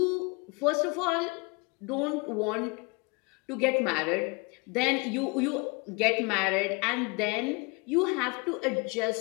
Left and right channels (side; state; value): right; quieter; 29.3 dB